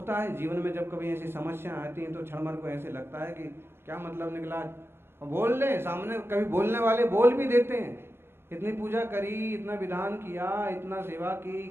है जीवन में जब कभी ऐसी समस्या आती हैं तो क्षण भर को ऐसे लगता है कि क्या मतलब निकला, और बोल ले सामने। कभी बोलने वाले बोल भी देते हैं, इतनी पूजा करी, इतना विधान किया, इतना सेवा की,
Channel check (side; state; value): left; late; 0.12 ms